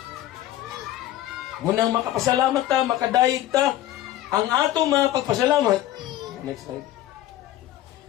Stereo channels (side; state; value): right; quieter; 13.8 dB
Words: Munang makapasalamat ta, makadayeg ta, ang atong mga pagpasalamat, next slide,